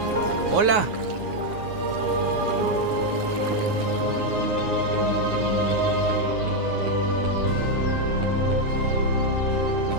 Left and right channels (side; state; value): left; late; 9.6 ms